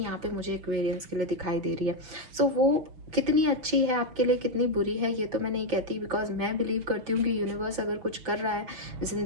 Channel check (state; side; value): late; left; 6.0 ms